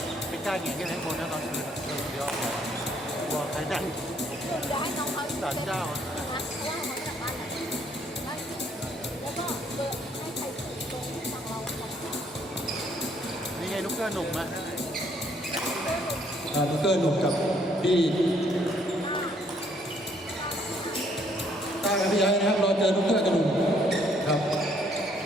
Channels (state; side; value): normal; both; correlation 0.66